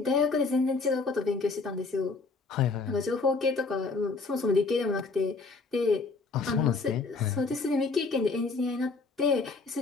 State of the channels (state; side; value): quieter; right; 4.1 dB